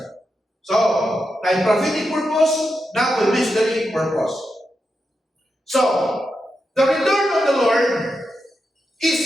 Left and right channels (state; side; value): normal; both; correlation 0.87